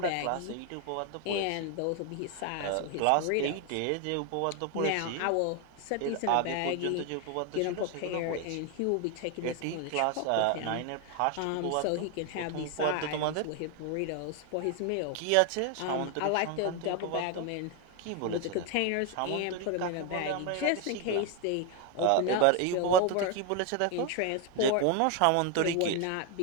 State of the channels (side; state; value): both; different; correlation 0.01